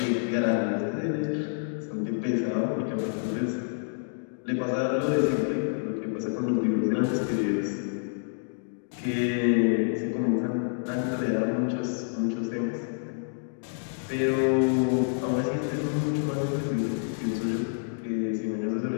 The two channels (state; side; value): silent; right; digital silence